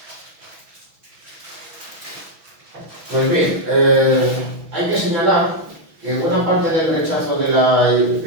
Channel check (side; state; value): left; late; 6.1 ms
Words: Pues bien, hay que señalar que buena parte del rechazo de la